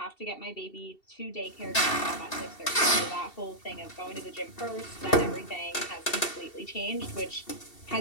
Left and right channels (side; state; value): right; late; 2.7 ms